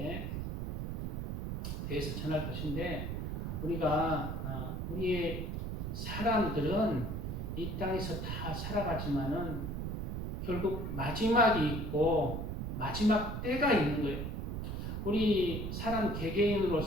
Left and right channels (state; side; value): noise; right; rumble, 3 dB below the sound